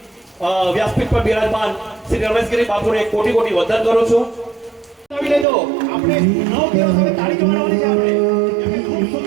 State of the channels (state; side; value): drops out; left; at 5.5 s